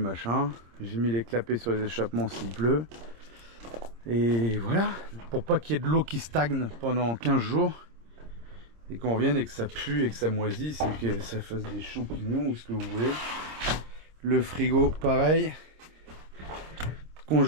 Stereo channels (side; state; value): left; late; 26 ms